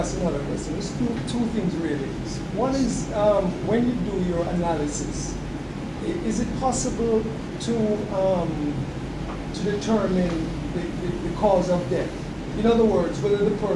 another question, there's two things really. One is when you do your analysis, is it possible to determine the cause of death? In other words, whether the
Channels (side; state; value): both; identical; correlation 1.00